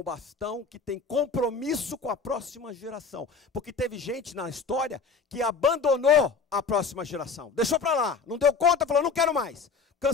bastão que tem compromisso com a próxima geração. Porque teve gente na história que abandonou a próxima geração. Deixou para lá, não deu conta, falou, não quero mais.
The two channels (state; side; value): quieter; right; 5.0 dB